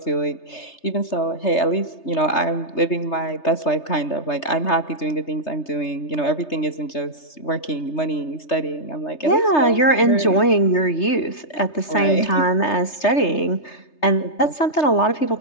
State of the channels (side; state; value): right; late; 3.3 ms